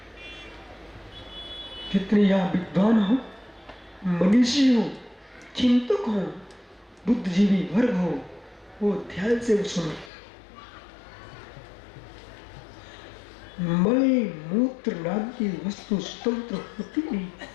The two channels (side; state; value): right; drops out; at 10.1 s